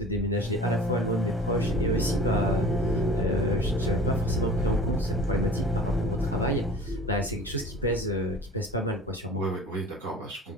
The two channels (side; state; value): both; normal; correlation 0.43